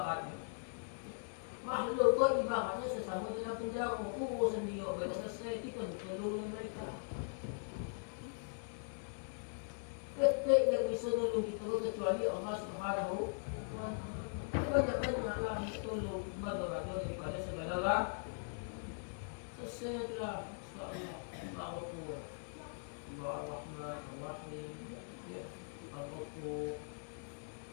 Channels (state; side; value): silent; right; digital silence